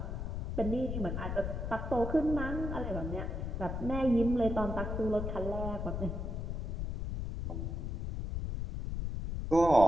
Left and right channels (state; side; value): noise; left; rumble, 3 dB below the sound